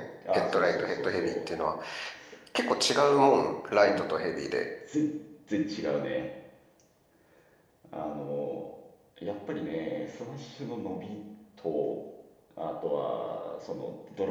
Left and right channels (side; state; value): both; identical; correlation 1.00